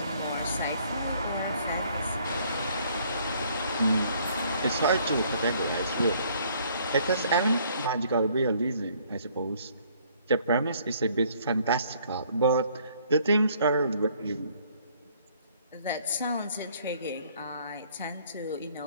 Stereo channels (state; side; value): inverted; both; correlation -0.61